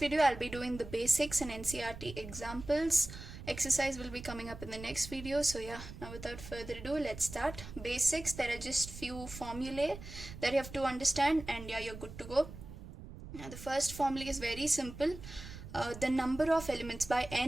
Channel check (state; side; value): noise; right; rumble, 13 dB below the sound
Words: I'll be doing the basics and NCERT examples. Exercise will be coming up in the next video. So yeah, now without further ado, let's start. Basics, there are just few formulae that you have to understand, and yeah, you're good to go. Now the first formula is very simple. The number of elements by